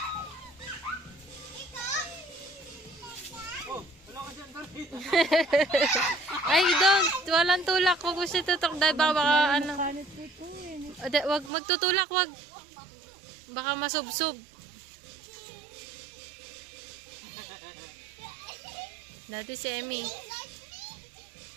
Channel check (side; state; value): left; drops out; at 11.5 s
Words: Oh, wala ka dyan, Dorothy. Ay, don't. Walang tulak. Huwag mo siya tutok dahil baka ano. Kanit nito eh. Wag magtutulak, wag. Baka masubsob. Dati si Emmy.